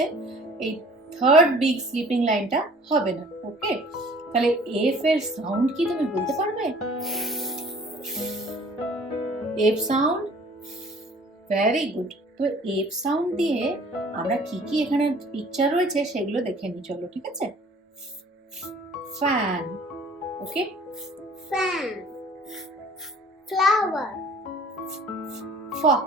এই থার্ড বিগ স্লিপিং লাইনটা হবে না। ওকে, তাহলে F এর সাউন্ড কি তুমি বলতে পারবে? F sound, very good. তো F সাউন্ড দিয়ে আমরা কি কি এখানে পিকচার রয়েছে সেগুলো দেখে নিই, চলো। ঠিক আছে, fan, okay, fan, flower, fox,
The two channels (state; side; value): normal; both; correlation 0.52